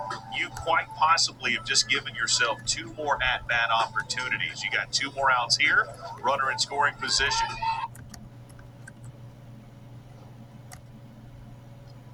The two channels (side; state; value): both; identical; correlation 1.00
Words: you quite possibly have just given yourself 2 more at-bat opportunities. You got 2 more outs here, runner in scoring position.